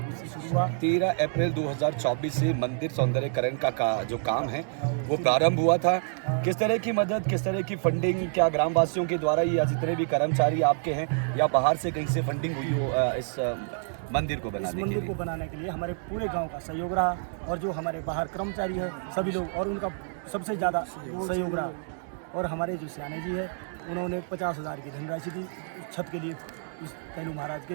से शुरू हुआ। 13 अप्रैल 2024 से मंदिर सौंदर्यकरण का जो काम है वो प्रारंभ हुआ था। किस तरह की मदद, किस तरह की फंडिंग, क्या ग्रामवासियों के द्वारा या जितने भी कर्मचारी आपके हैं या बाहर से कहीं से फंडिंग हुई हो इस मंदिर को बनाने के लिए हमारे पूरे गांव का सहयोग रहा, और जो हमारे बाहर कर्मचारी है सभी लोग, और उनका सबसे ज़्यादा सहयोग रहा। और हमारे जो सियाने जी है, उन्होंने 50,000 की धनराशि दी छत के लिए, इस कैलू महाराज के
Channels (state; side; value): silent; left; digital silence